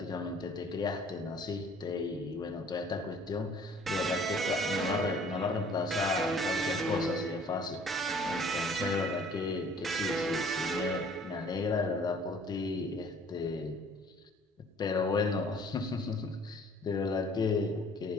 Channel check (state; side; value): normal; both; correlation 0.54